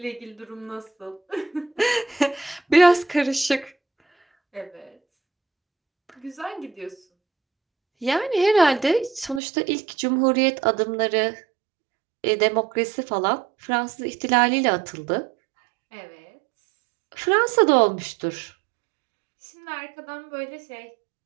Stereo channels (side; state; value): left; drops out; at 9.4 s